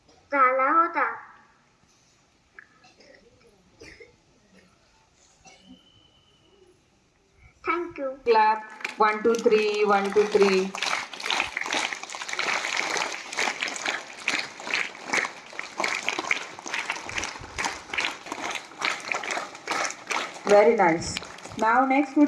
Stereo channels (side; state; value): both; identical; correlation 1.00